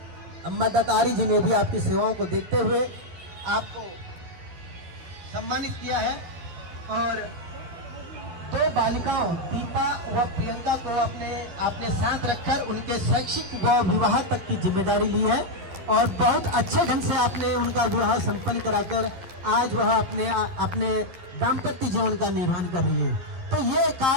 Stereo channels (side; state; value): left; late; 11 ms